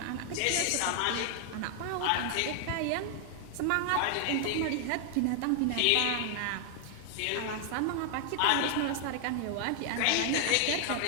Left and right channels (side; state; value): both; different; correlation 0.00